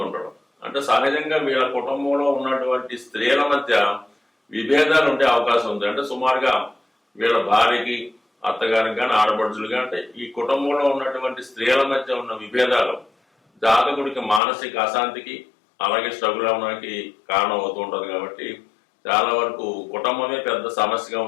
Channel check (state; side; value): drops out; right; at 14.4 s